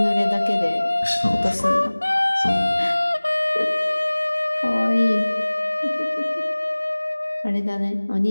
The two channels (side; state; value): both; inverted; correlation -1.00